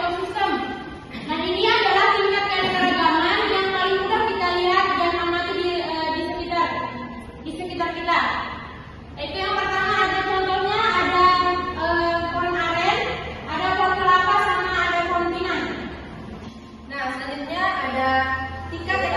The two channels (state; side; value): identical; both; correlation 1.00